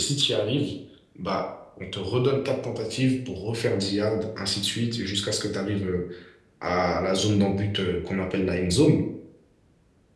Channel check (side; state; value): both; identical; correlation 1.00